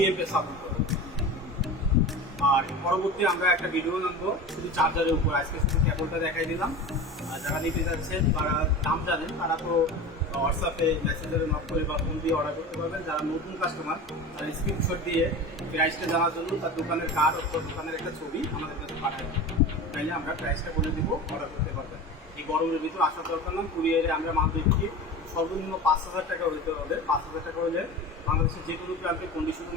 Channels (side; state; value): both; normal; correlation 0.31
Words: এমপি সাপোর্ট করবে। আর পরবর্তী আমরা একটা ভিডিও আনবো শুধু চার্জারের উপর। আজকে শুধু কেবলটা দেখাই দিলাম। আর যারা নিতে যাচ্ছেন তারা দাম জানেন, তারা তো হোয়াটসঅ্যাপে মেসেঞ্জারে নক করে বা ফোন দিয়ে অর্ডার করতে পারবেন। যারা নতুন কাস্টমার তারা স্ক্রিনশট দিয়ে প্রাইসটা জানার জন্য তার দোকানের কার্ড অথবা দোকানের একটা ছবি আমাদের কাছে পাঠায়, তাইলে আমরা প্রাইসটা বলে দিব, অর্ডার করতে পারবেন। এই গরমের ভিতরে আসার দরকার না। কুরিয়ারে আমরা মাল দিচ্ছি সর্বনিম্ন 5000 টাকা হইতে হবে। 5000 টাকা হলে বাংলাদেশের যে কোনো প্রান্তে কন্ডিশনে